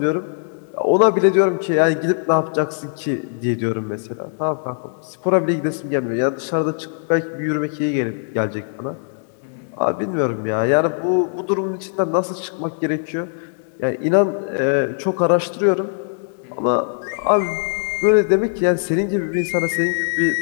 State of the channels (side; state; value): right; silent; digital silence